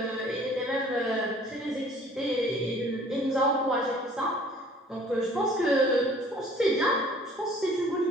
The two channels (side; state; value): both; normal; correlation 0.53